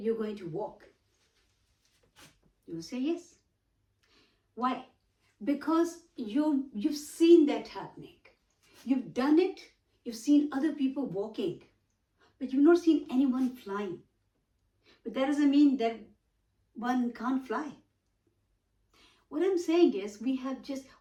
going to walk, you will say yes. Why? Because you've seen that happening. You've done it. You've seen other people walking, but you've not seen anyone flying. But that doesn't mean that one can't fly. What I'm saying is we're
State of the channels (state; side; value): identical; both; correlation 1.00